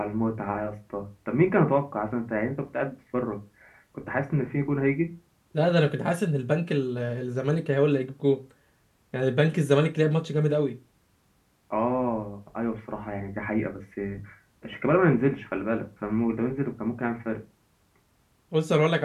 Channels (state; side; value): identical; both; correlation 1.00